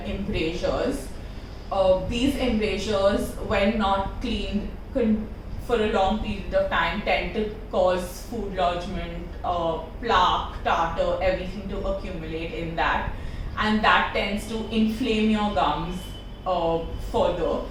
embrasures. These embrasures, when not cleaned for a long period of time tend to cause food lodgement, plaque, tartar, everything to accumulate in that, and that tends to inflame your gums further.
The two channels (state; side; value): identical; both; correlation 1.00